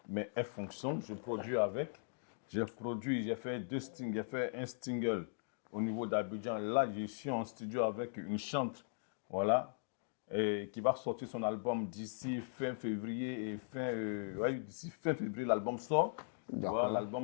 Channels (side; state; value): right; silent; digital silence